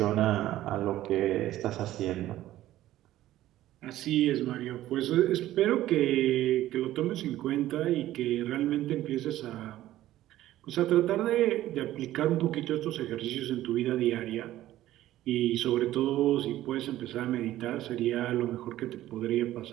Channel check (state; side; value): quieter; left; 14.3 dB